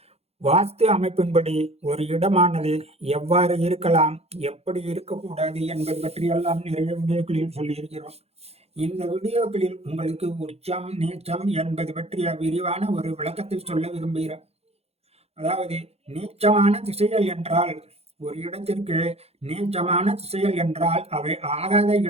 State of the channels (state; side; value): late; left; 0.30 ms